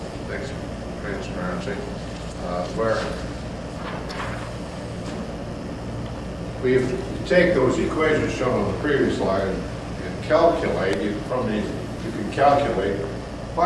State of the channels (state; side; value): identical; both; correlation 1.00